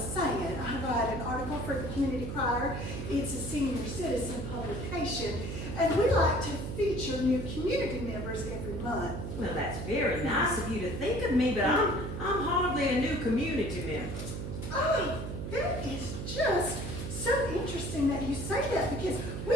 I write an article for the Community Crier. It's a senior citizen publication, and we like to feature new community members every month. Well, that's very nice of you to think of me, but I'm hardly a new community member. Oh, that is just so interesting that you say that, because we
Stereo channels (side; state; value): right; noise; hum, 5 dB below the sound